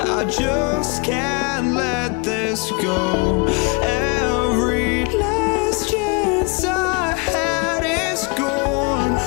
just can't let this go. Every last chance I had is gone,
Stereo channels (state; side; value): quieter; right; 30.1 dB